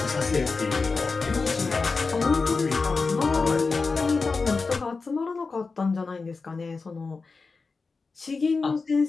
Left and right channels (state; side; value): quieter; right; 4.3 dB